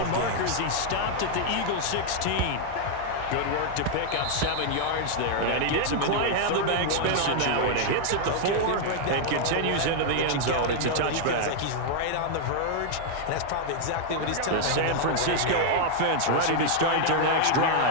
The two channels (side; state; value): both; different; correlation 0.00